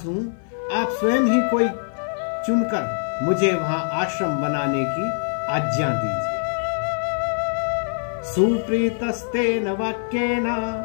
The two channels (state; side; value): silent; right; 57 dB below the other